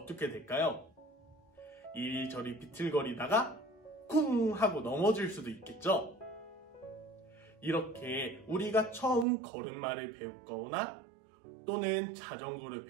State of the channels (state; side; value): drops out; left; at 9.2 s